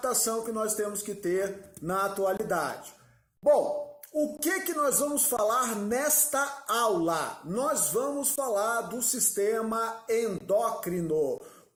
que nós temos que ter na atualidade. Bom, o que nós vamos falar nesta aula? Nós vamos falar do sistema endócrino,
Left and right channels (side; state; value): both; identical; correlation 1.00